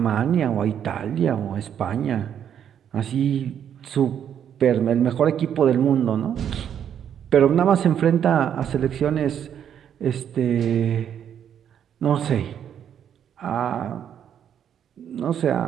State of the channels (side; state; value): left; quieter; 9.1 dB